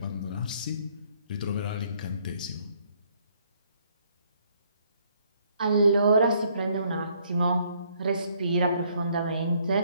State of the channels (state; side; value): inverted; both; correlation -0.67